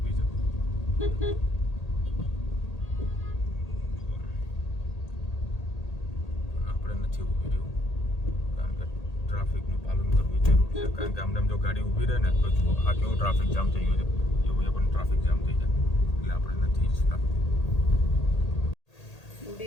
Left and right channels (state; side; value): late; right; 1.8 ms